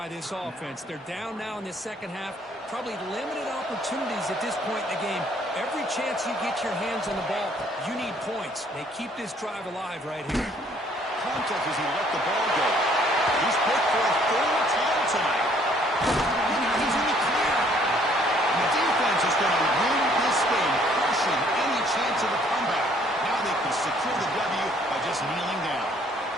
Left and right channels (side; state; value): both; normal; correlation 0.62